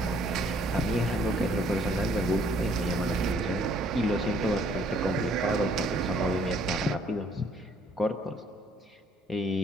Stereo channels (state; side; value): normal; both; correlation 0.63